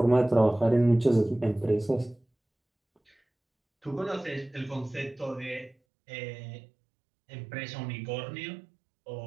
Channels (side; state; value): left; drops out; at 5.8 s